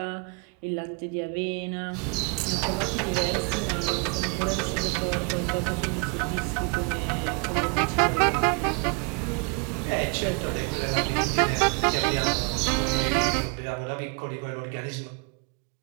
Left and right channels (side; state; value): left; quieter; 31.3 dB